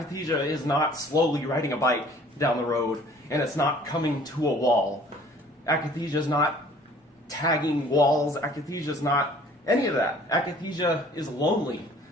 is not slowly riding a bike down the road, and it's not coming to a wall. Akathisia is not tagging walls. Akathisia is not any of that. Akathisia is lonely.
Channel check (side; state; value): both; normal; correlation 0.53